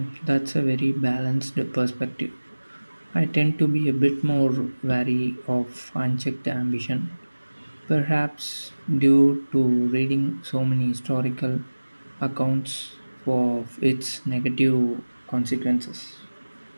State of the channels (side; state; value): both; inverted; correlation -1.00